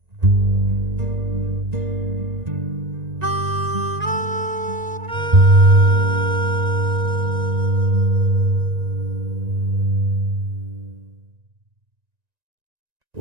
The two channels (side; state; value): left; late; 1.9 ms